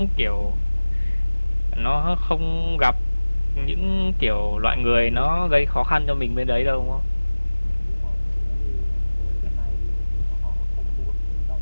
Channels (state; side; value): inverted; both; correlation -1.00